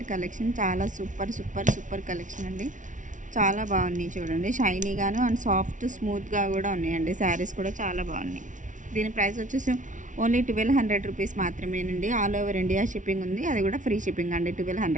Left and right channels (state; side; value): late; left; 0.37 ms